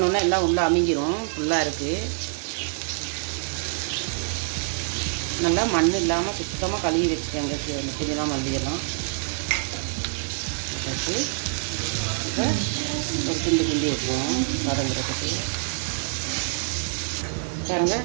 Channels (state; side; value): silent; left; 61 dB below the other